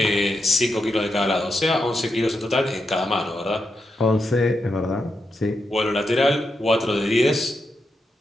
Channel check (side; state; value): both; normal; correlation 0.85